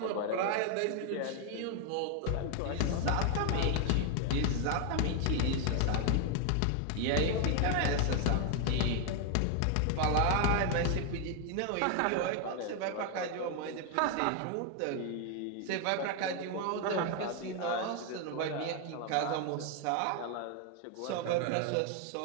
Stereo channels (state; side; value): different; both; correlation 0.00